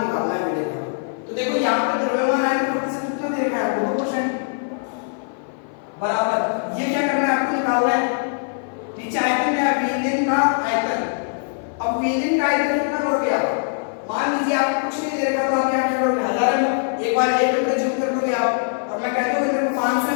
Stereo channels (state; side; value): silent; right; 55 dB below the other